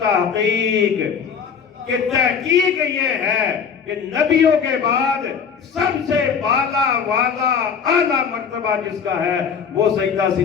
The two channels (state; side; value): quieter; right; 6.7 dB